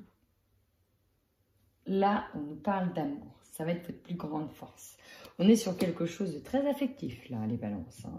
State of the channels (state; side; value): identical; both; correlation 1.00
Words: Là, on nous parle d'amour. Ça va être votre plus grande force. On est sur quelque chose de très affectif, là, les balances.